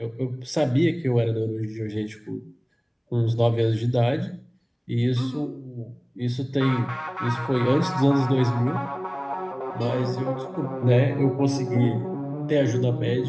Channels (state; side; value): identical; both; correlation 1.00